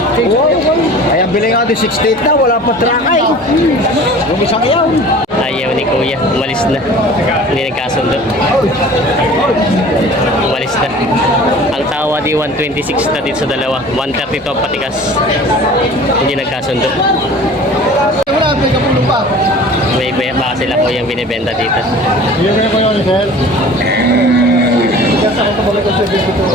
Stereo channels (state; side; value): normal; both; correlation 0.43